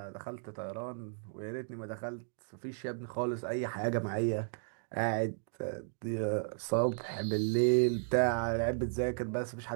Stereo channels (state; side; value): silent; left; digital silence